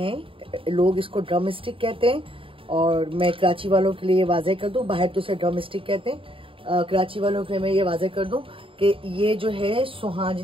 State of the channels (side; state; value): left; late; 0.26 ms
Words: लोग इसको ड्रम स्टिक कहते हैं, और मैं कराची वालों के लिए वाज़ेह कर दूं, बाहर तो उसे ड्रम स्टिक कहते हैं, कराची वालों के लिए मैं ये वाज़ेह कर दूं कि ये जो है